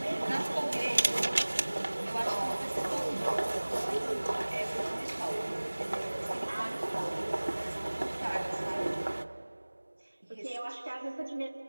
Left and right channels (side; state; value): both; inverted; correlation -1.00